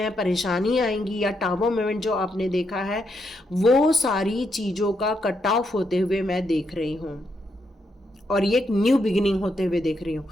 परेशानी आएंगी, या टावर मोमेंट जो आपने देखा है, वो सारी चीज़ों का कट ऑफ होते हुए मैं देख रही हूँ और ये एक न्यू बिगिनिंग होते हुए देख रही हूँ।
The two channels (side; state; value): both; normal; correlation 0.79